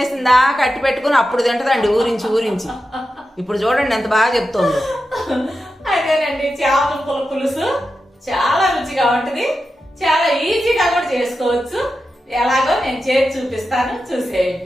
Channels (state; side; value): normal; both; correlation 0.90